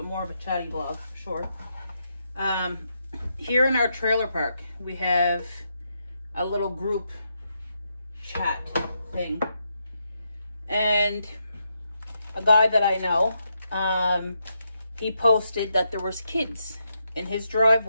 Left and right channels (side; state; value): both; inverted; correlation -0.82